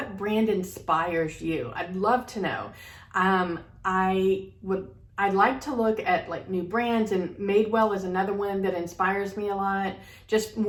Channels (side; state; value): both; identical; correlation 1.00